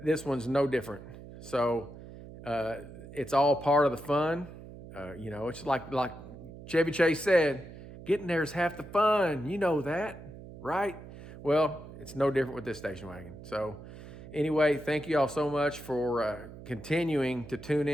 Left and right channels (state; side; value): noise; right; hum, 15 dB below the sound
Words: this one's no different. So it's all part of the fun. It's like Chevy Chase said, getting there is half the fun. You know that, right? Well, it's no different with this station wagon. So anyway, thank you all so much for continuing to tune